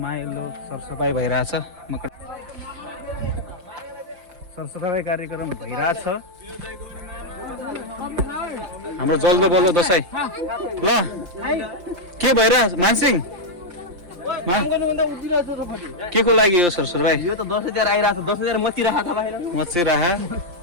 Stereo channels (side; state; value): left; late; 5.7 ms